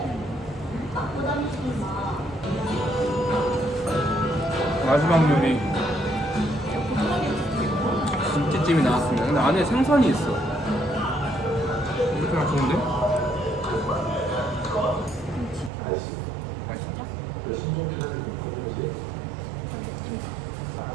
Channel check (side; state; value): left; drops out; at 15.7 s